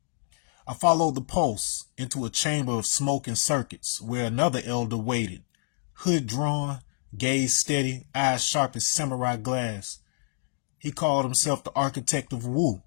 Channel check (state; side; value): silent; right; digital silence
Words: I followed the pulse into a chamber of smoke and circuits where another elder waited, hood drawn, gaze steady, eyes sharp as samurai glass. He called himself the architect of Wu.